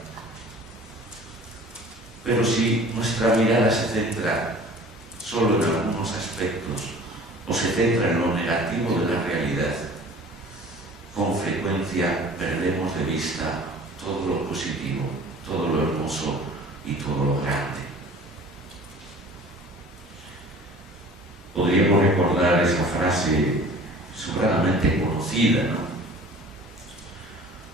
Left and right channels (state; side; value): normal; both; correlation 0.46